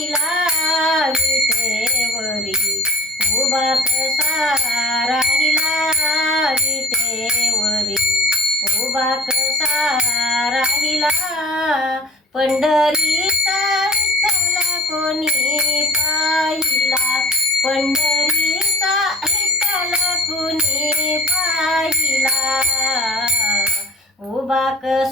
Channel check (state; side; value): normal; both; correlation 0.41